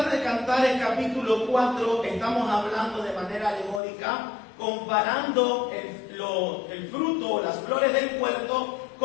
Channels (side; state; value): right; drops out; at 3.8 s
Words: de Cantares, capítulo 4, estamos hablando de manera alegórica, comparando el fruto, las flores del huerto,